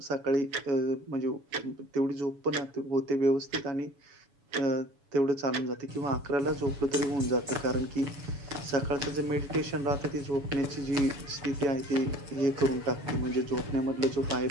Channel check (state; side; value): late; left; 7.1 ms